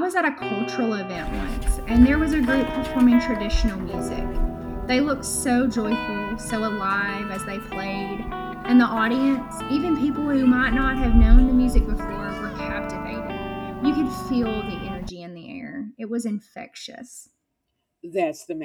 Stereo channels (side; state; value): both; identical; correlation 1.00